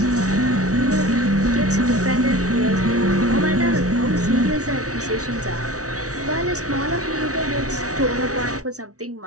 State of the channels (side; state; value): left; late; 0.67 ms